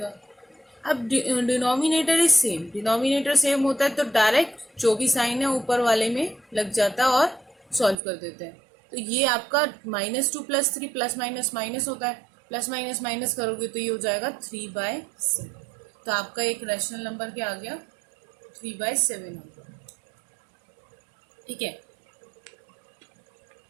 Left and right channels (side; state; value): left; drops out; at 8.0 s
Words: अब denominator is same, denominator same होता है तो डायरेक्ट जो भी साइन है ऊपर वाले में लग जाता है और सॉल्व कर देते हैं। तो ये आपका -2 + 3 प्लस माइनस माइनस होता है। प्लस माइनस माइनस करोगे तो ये हो जाएगा 3/7। तो आपका एक रैशनल नंबर क्या आ गया? 3/7 हो गया, ठीक है।